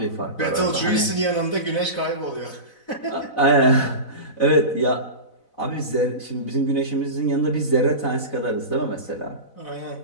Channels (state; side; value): late; right; 4.0 ms